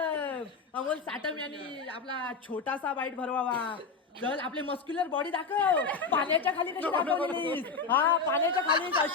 साटम यांनी आपला छोटासा बाईट भरवावा. चल आपली मस्क्युलर बॉडी दाखव. पाण्याच्या खाली कशी दाखवलीस. हा पाण्याच्या खाली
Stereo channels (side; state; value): right; quieter; 4.7 dB